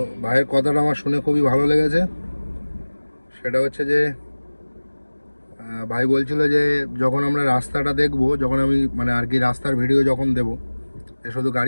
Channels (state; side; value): inverted; both; correlation -1.00